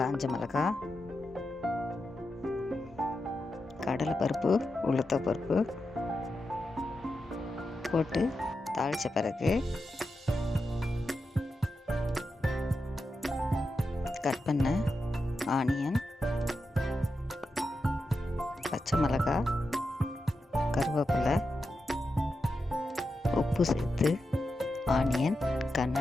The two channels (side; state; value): both; normal; correlation 0.89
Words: மிளகாய், கடலைப்பருப்பு, உளுத்தப்பருப்பு போட்டு தாளித்த பிறகு கட் பண்ண ஆனியன், பச்சை மிளகாய், கருவேப்பிலை, உப்பு சேர்த்து ஆனியன்